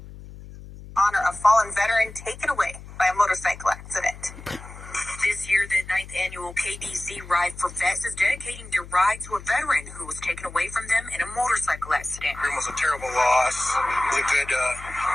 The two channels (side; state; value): left; noise; hum, 15 dB below the sound